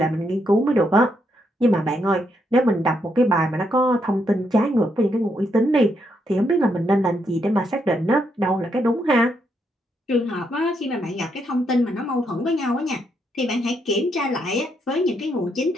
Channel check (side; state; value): both; normal; correlation 0.77